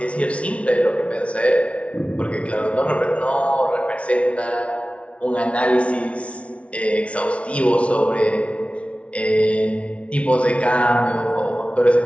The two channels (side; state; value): right; late; 0.062 ms